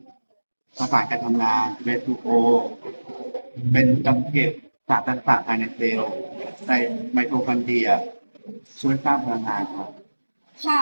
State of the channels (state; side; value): inverted; both; correlation -1.00